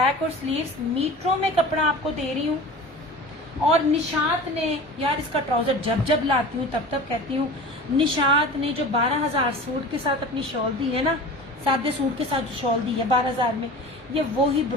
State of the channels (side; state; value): both; normal; correlation 0.36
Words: और स्लीव्स, मीटरों में कपड़ा आपको दे रही हूँ। और निशात ने, यार इसका ट्राउजर जब जब लाती हूँ तब तब कहती हूँ, निशात ने जो 12,000 सूट के साथ अपनी शॉल दी है ना, सादे सूट के साथ जो शॉल दी है 12,000 में, ये वो ही